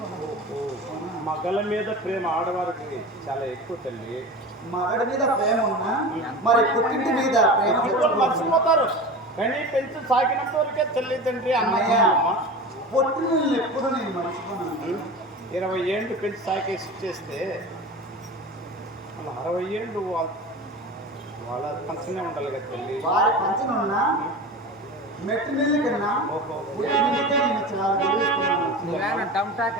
మగల మీద ప్రేమ ఆడవారికి చాలా ఎక్కువ తల్లి. మగడి మీద ప్రేమ ఉన్నా మరి పుట్టింటి మీద ప్రేమ తెచ్చుకోవాలి. మర్చిపోతారు కానీ పెంచి సాగినంత వరకే తల్లి తండ్రి అన్నయ్య అన్నయ్య పుట్టిన ఎప్పుడు నేను మర్చిపోను. 20 ఏళ్ళు పెంచి సాకేసి చేస్తే వాళ్ళ 60 ఏళ్ళు వాళ్ళ పంచనే ఉండాలి కదా తల్లి. వారి పంచన ఉన్నా మెట్టు నీళ్ళు కన్నా పుట్టినకే నేను చాలా గెలుస్తున్నాను. నువ్వేనా టమ్టా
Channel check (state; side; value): normal; both; correlation 0.31